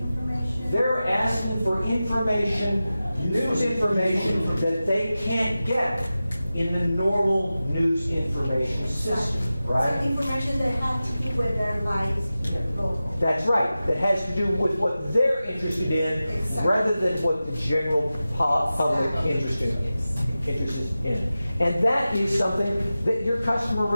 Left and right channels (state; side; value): inverted; both; correlation -0.94